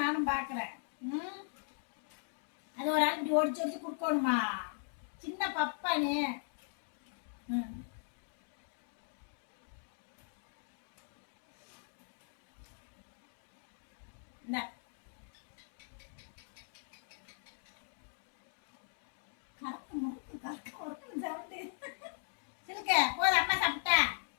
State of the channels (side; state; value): right; silent; digital silence